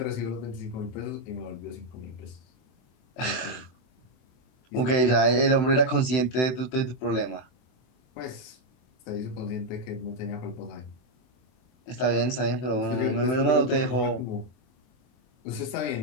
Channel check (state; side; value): late; right; 23 ms